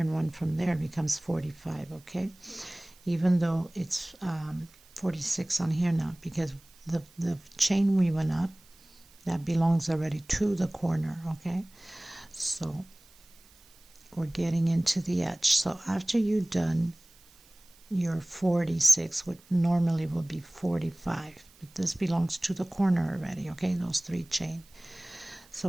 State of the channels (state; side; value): noise; right; hiss, 27 dB below the sound